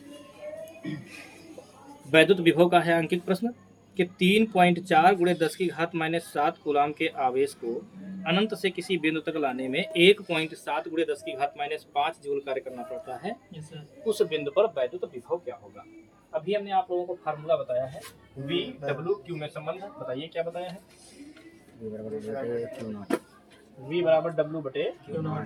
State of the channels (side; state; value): both; identical; correlation 1.00